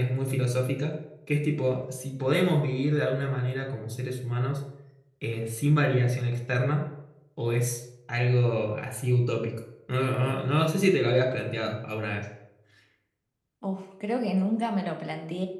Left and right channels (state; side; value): identical; both; correlation 1.00